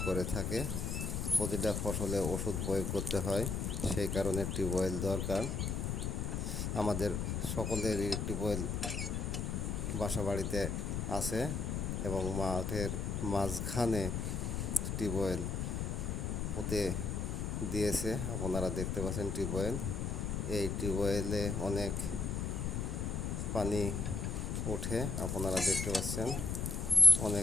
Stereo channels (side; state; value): left; noise; rumble, 1 dB below the sound